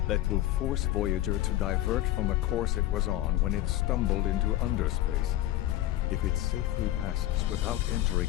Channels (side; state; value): right; quieter; 14.6 dB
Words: that will force Voyager to divert from the course it was on when it stumbled into underspace. If it safely passes without entering